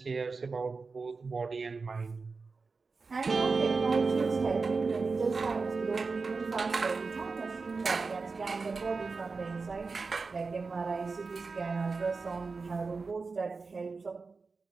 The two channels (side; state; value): left; quieter; 4.4 dB